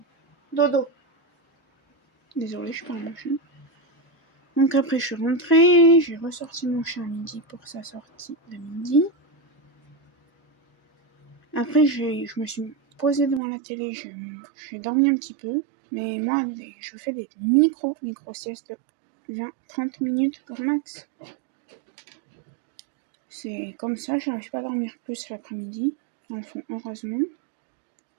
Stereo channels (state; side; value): drops out; left; at 13.4 s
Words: Dodo. Désolée, je parle mon chien. Donc après, je suis rentrée. J'ai ressorti mon chien à midi pour sa sortie de midi. Après, je me suis posée devant la télé. J'ai dormi un petit peu. Mais moi, je fais des micro siestes de 20-30 minutes grand max. C'est comme ça, j'arrive pas à dormir plus l'après-midi. Enfin, heureusement.